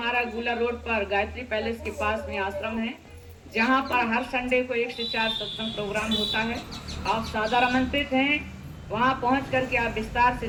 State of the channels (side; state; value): both; identical; correlation 1.00